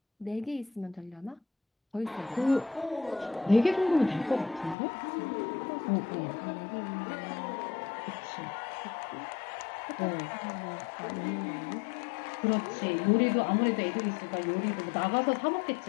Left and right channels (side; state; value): right; drops out; at 4.8 s